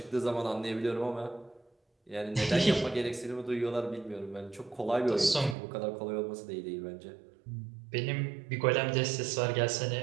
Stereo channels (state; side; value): drops out; left; at 5.6 s